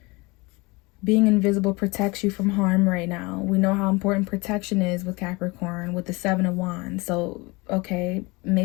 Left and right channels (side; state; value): right; quieter; 25.2 dB